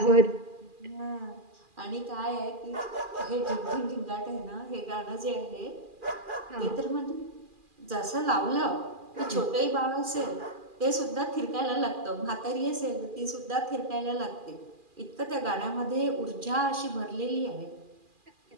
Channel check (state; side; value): late; left; 2.4 ms